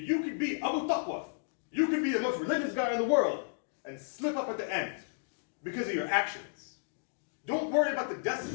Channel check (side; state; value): right; silent; digital silence